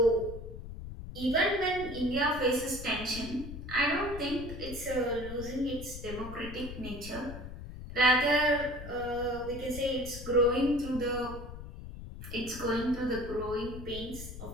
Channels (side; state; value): left; noise; rumble, 10 dB below the sound